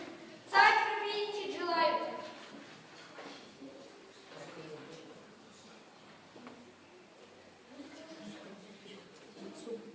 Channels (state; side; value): identical; both; correlation 1.00